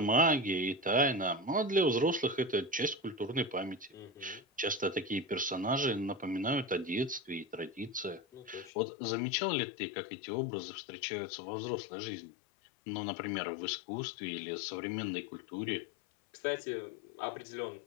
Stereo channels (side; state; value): right; drops out; at 8.7 s